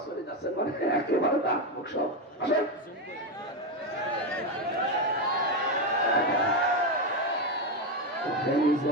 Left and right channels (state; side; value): normal; both; correlation 0.10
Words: পড়ে যাচ্ছেন, মানে একেবারে দাঁত মুখ সব। আসেন